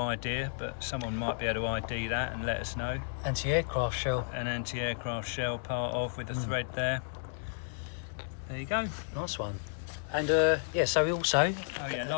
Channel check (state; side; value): silent; right; digital silence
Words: but someone might be able to ID that and let us know. Anti-aircraft shell. An anti-aircraft shell part of with a thread there. There you go. Nice one. And yeah, so we also... Oh yeah,